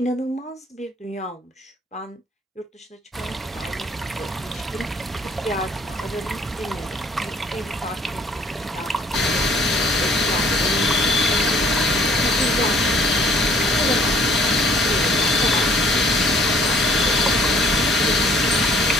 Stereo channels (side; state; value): both; normal; correlation 0.59